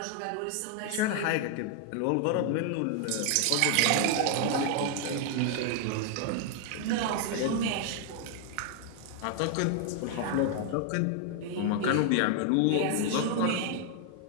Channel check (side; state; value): both; different; correlation 0.00